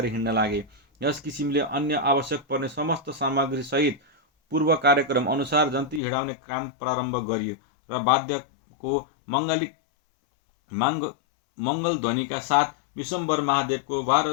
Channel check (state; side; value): drops out; right; at 6.0 s